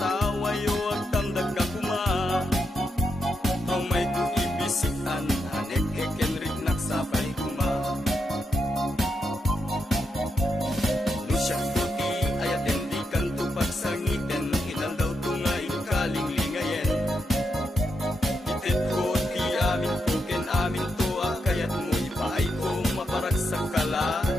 at tamdag ka kuma. Ang may kuibisitan hanek ekenrik nagsapay kuma. Nusyak tuti ayaten di kanto pagsangiten ilan daw tunga ikaling lingayen. Itit ko ti amin ko ken amin to akayat mo ipaay ko maparag sa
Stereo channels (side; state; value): both; normal; correlation 0.83